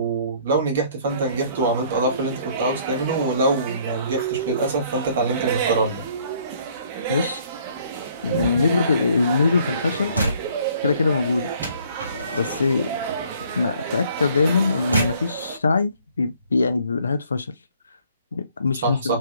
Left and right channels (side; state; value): both; inverted; correlation -0.61